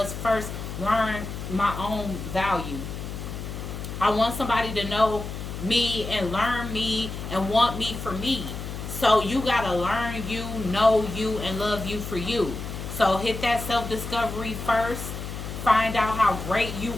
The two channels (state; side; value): noise; left; hum, 7 dB below the sound